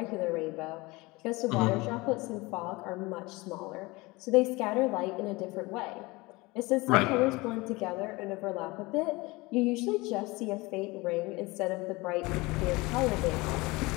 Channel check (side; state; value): right; quieter; 23.1 dB